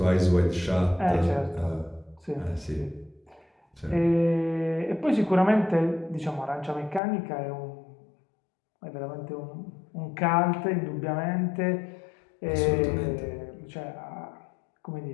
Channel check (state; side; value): drops out; right; at 7.0 s